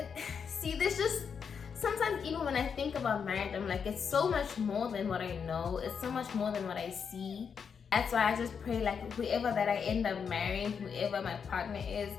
See, there's just sometimes, even when I think about marriage, I'm like, it's so much more than what I know. It's so much more than what I see. That's why I just pray like whoever that I end up marrying, whoever my partner is,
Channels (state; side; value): quieter; right; 6.6 dB